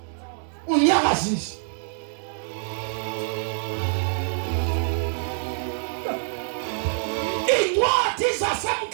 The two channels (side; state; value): left; silent; digital silence